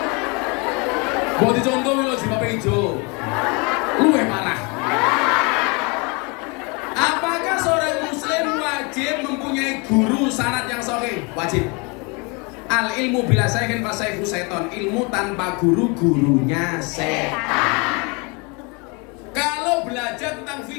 Buat dicontoh lho jilbabnya hijau. Luwih parah. Apakah seorang muslim wajib wajib mempunyai guru sanad yang sahih, wajib. Al ilmu bila sayyidin fasayhu seton, ilmu tanpa guru gurunya setan. Kalau belajar tentang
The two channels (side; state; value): right; quieter; 30.4 dB